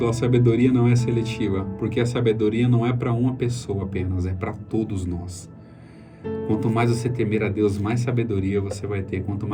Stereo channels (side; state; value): both; identical; correlation 1.00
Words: A sabedoria não é seletiva. Porque a sabedoria não é para uma pessoa apenas, é para todos nós. Quanto mais você temer a Deus, mais sabedoria você vai ter. Quanto